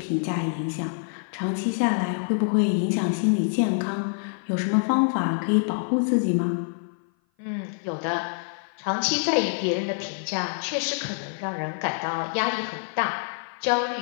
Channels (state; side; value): silent; right; 56 dB below the other